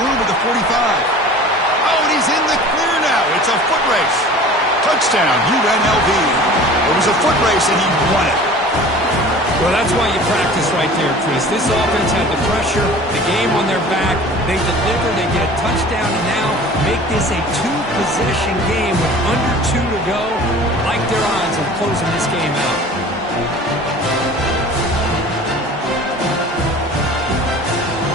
at the 45. Oh, and he's in the clear now. It's a foot race. Touchdown, UNLV. It was a foot race, and he won it. Well, that's why you practice right there, Chris. This offense had the pressure, the game on their back. They deliver, they get a touchdown, and now make this a 2-possession game with under 2 to go. Like their odds of closing this game out.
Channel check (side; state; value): both; normal; correlation 0.43